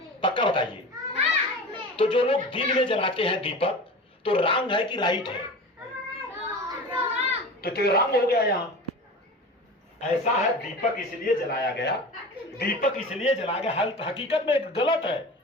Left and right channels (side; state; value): both; normal; correlation 0.33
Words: पक्का बताइए। तो जो लोग दिन में जलाते हैं दीपक तो रॉन्ग है कि राइट है? तो रॉन्ग हो गया। यहाँ ऐसा है दीपक इसलिए जलाया गया, दीपक इसलिए जलाया गया, हकीकत में गलत है।